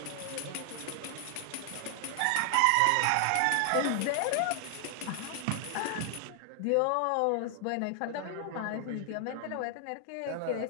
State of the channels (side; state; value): both; different; correlation 0.00